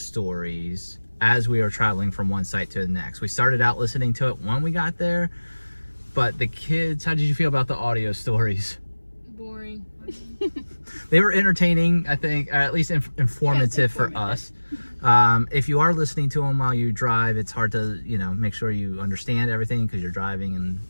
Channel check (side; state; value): both; inverted; correlation -1.00